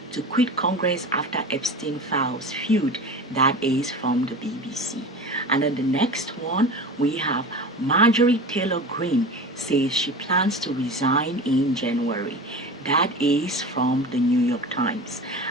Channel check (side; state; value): both; normal; correlation 0.32